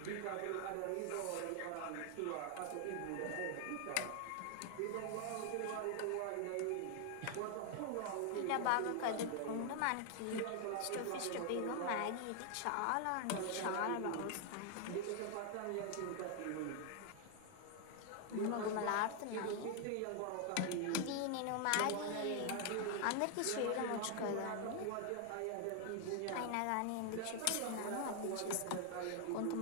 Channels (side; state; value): both; different; correlation 0.00